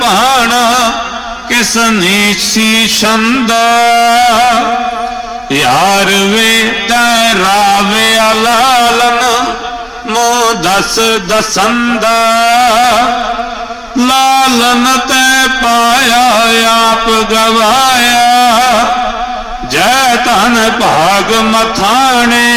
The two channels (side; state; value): both; identical; correlation 1.00